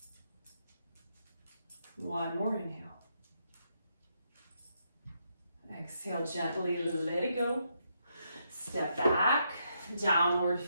One more inhale. Exhale, gently let it go. Step back, downward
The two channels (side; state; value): both; inverted; correlation -0.79